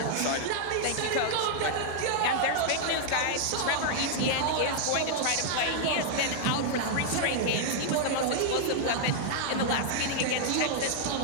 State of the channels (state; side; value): different; both; correlation -0.01